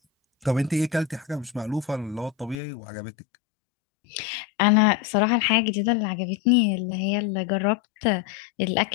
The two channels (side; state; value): right; drops out; at 2.6 s